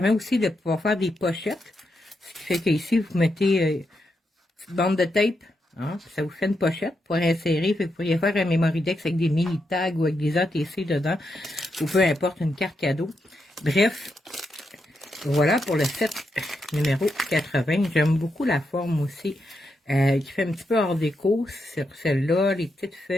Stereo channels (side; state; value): both; normal; correlation 0.83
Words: aussi de pouvoir faire des pochettes. Ce qui fait qu'ici, vous mettez une petite bande de tape. Hein, ça vous fait une pochette pour insérer. Vous pourriez faire un Memory-Dex avec des mini tags ou avec des ATC dedans. Ou peu importe, une carte cadeau. Bref. Voilà pour le set numéro 80. J'aime beaucoup la forme aussi, qui fait un petit peu hors déco sur celle-là, les petites